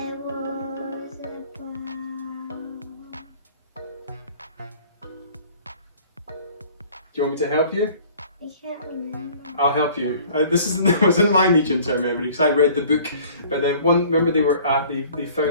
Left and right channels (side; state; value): both; inverted; correlation -0.51